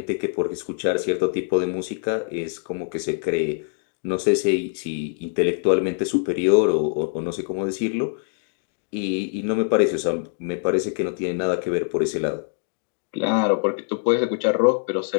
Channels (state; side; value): silent; right; 63 dB below the other